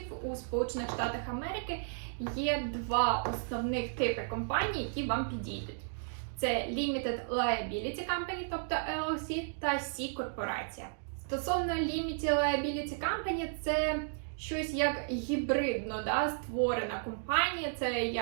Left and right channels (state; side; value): silent; left; digital silence